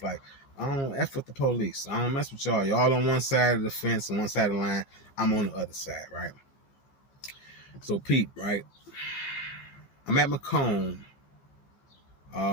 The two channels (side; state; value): right; late; 15 ms